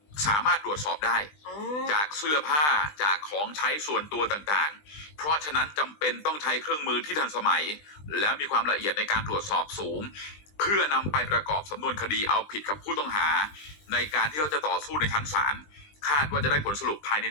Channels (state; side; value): late; right; 20 ms